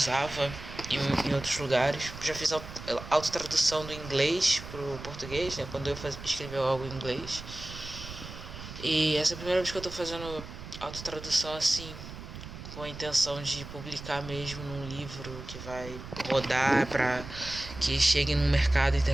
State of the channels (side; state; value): right; noise; rumble, 12 dB below the sound